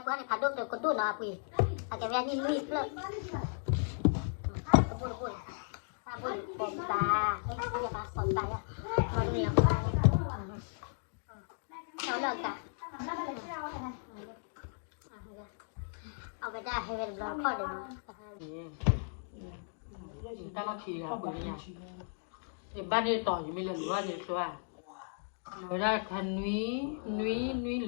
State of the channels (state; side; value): silent; right; digital silence